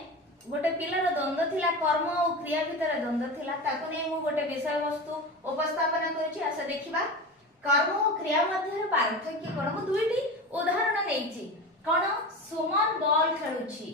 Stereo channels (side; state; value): both; normal; correlation 0.27